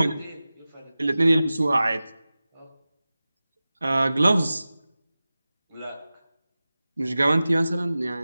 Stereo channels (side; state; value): both; inverted; correlation -0.96